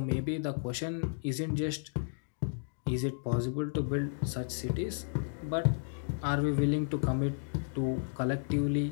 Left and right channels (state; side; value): silent; right; digital silence